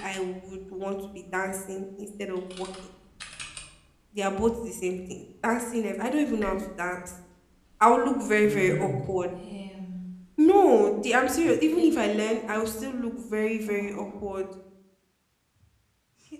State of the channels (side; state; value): both; identical; correlation 1.00